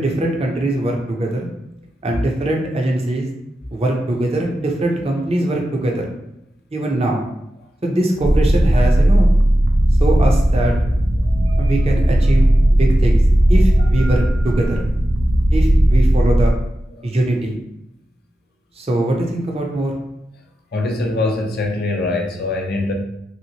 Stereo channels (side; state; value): both; normal; correlation 0.91